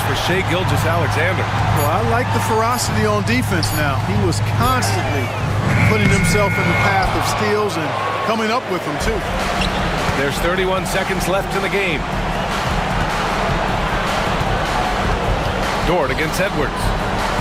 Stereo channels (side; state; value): both; identical; correlation 1.00